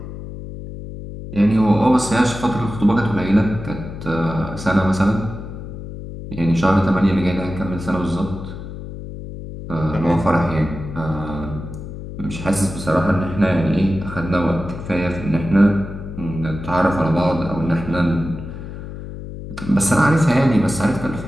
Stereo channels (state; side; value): noise; left; hum, 10 dB below the sound